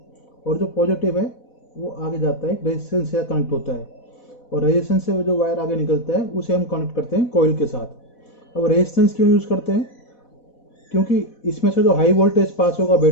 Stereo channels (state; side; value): late; right; 4.1 ms